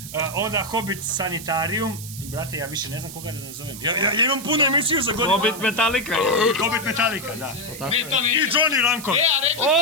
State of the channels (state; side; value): noise; right; hiss, 12 dB below the sound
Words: Onda Hobbit Sanitarijum, brate, ja više ne znam koga da nazovem. Ja imam puno emisiju za godinu. Hobbit Metallica. Hobbit Metallica, da. I Johnny Ranko.